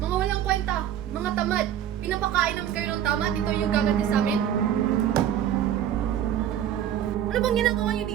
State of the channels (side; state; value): left; quieter; 10.5 dB